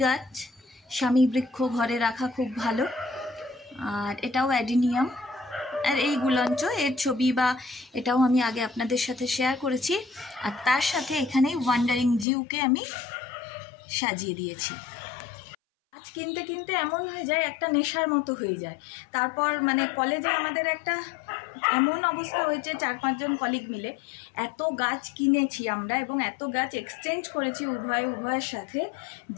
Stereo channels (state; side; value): drops out; right; at 12.2 s